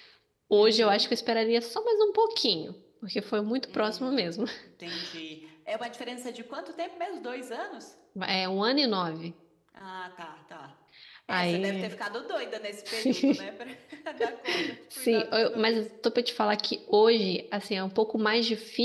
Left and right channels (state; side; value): identical; both; correlation 1.00